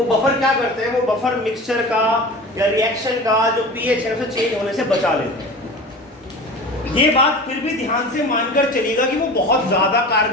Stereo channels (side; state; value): both; normal; correlation 0.35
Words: बफर क्या करते हैं, वो बफर मिक्सचर का या रिएक्शन का जो pH है उसे चेंज होने से बचा लेते हैं। ये बात फिर भी ध्यान से मानकर चलिएगा कि वो बहुत ज्यादा